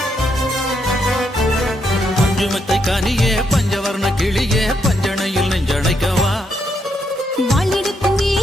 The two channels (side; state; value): both; normal; correlation 0.78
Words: பஞ்சுமெத்தை கனியே பஞ்சவர்ண கிளியே பஞ்சனையில் நெஞ்சணைக்கவா வாளெடுக்கும்